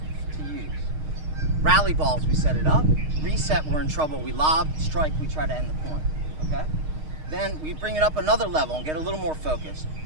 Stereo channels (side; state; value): left; late; 6.5 ms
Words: to use. Rally balls, we set it up. Reset, we're in trouble. We lob, strike, we try to end the point, okay? Then we bring it up another level and get a little more focused.